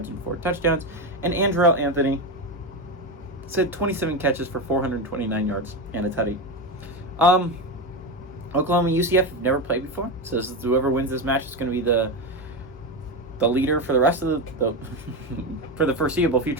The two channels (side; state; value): both; normal; correlation 0.15